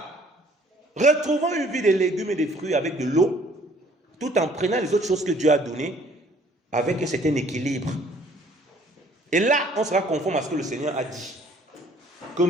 Retrouvons une vie de légumes et de fruits avec de l'eau, tout en prenant les autres choses que Dieu a données, avec un certain équilibre. Et là, on sera conforme à ce que le Seigneur a dit. Que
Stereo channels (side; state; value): both; normal; correlation 0.58